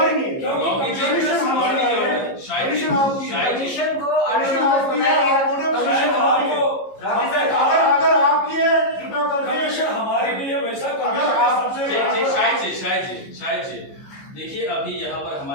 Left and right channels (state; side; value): late; right; 15 ms